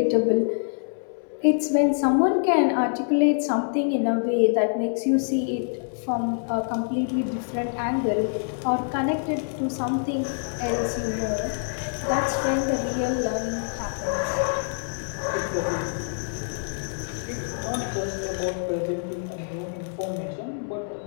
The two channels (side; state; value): right; silent; 61 dB below the other